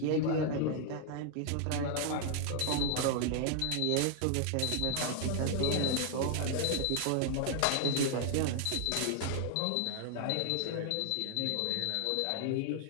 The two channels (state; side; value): different; both; correlation 0.00